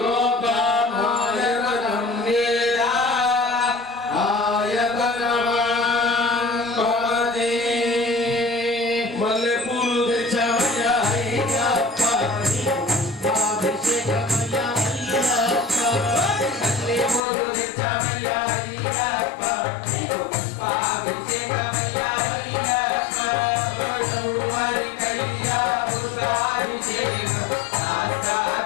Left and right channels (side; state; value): right; drops out; at 17.2 s